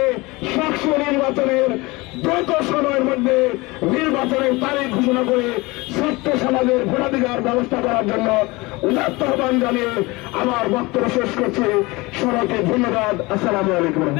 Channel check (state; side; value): quieter; right; 23.2 dB